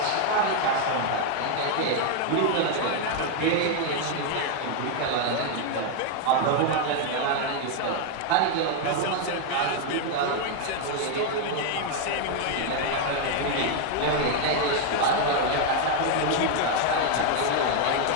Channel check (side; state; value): both; different; correlation 0.00